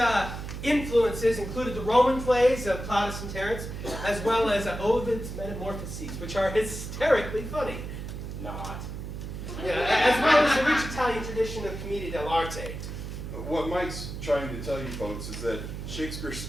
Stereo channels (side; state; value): right; noise; hum, 7 dB below the sound